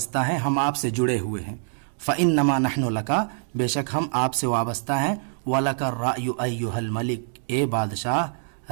ہیں، ہم آپ سے جڑے ہوئے ہیں. فإنما نحن لک بے شک ہم آپ سے وابستہ ہیں. وَلَكَ الرَّأْيُ أَيُّهَا الْمَلِكُ اے بادشاہ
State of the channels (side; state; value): left; silent; digital silence